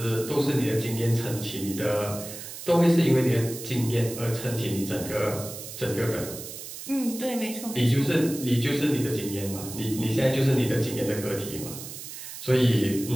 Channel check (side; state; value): right; noise; hiss, 11 dB below the sound